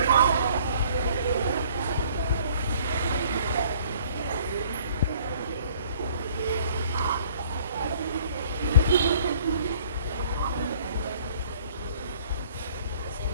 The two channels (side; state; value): both; inverted; correlation -0.56